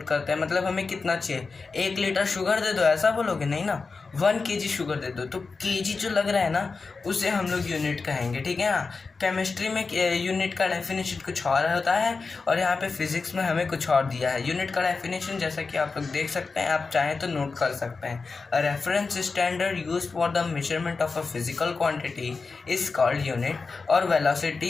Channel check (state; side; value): quieter; right; 4.4 dB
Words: करते हैं, मतलब हमें कितना चाहिए। 1 लीटर शुगर दे दो ऐसा बोलोगे, नहीं ना। 1 kg शुगर दे दो, तो केजी जो लग रहा है ना, उसे हम लोग यूनिट कहेंगे, ठीक है ना। केमिस्ट्री में यूनिट का डेफिनेशन कुछ और होता है और यहाँ पे फिजिक्स में हमें कुछ और दिया है। यूनिट का डेफिनेशन जैसा कि आप लोग देख सकते हैं, आप चाहें तो नोट कर सकते हैं। A reference standard use for the measurement of a physical quantity is called unit, और